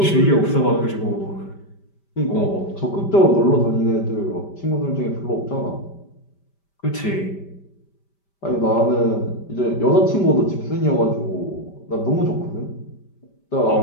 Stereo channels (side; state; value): right; late; 5.1 ms